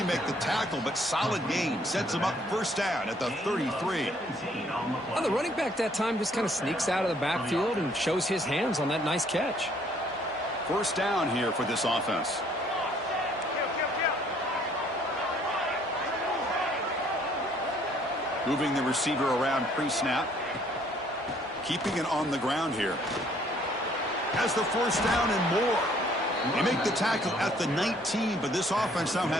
make the tackle, but solid gain sets them up first down at the 33. Well, the running back that time just kind of sneaks out of the backfield and shows his hands on that nice catch. First down here for this offense. Moving the receiver around pre-snap. Keeping it on the ground here. Has the first down and more. They make the tackle at the 19, but this offense now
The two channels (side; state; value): both; normal; correlation 0.62